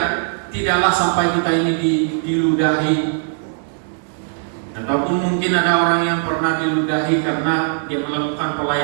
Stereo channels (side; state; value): left; silent; 66 dB below the other